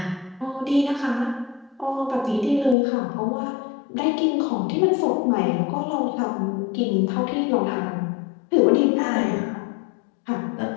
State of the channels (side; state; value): right; drops out; at 2.8 s